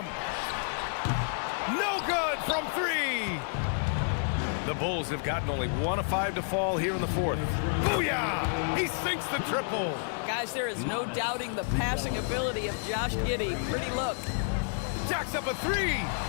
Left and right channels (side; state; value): right; silent; digital silence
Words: No good from 3. The Bulls have gotten only 1 of 5 to fall here in the fourth. Booyah! He sinks the triple. Guys, there is no doubting the passing ability of Josh Giddey. Pretty look. Jacks up a 3.